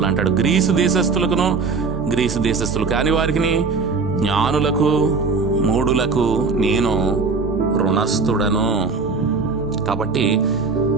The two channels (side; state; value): left; quieter; 4.5 dB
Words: అంటాడు, గ్రీసు దేశస్థులు కాని వారికి, జ్ఞానులకు, మూఢులకు నేను రుణస్థుడను. కాబట్టి